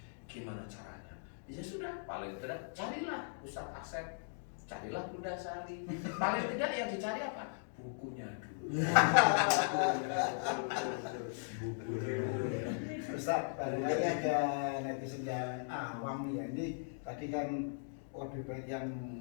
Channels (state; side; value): silent; right; digital silence